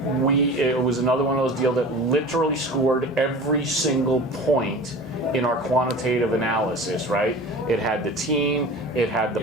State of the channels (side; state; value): both; normal; correlation 0.37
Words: was another one of those deals that literally scored every single point in our quantitative analysis, right? It had the team, it had the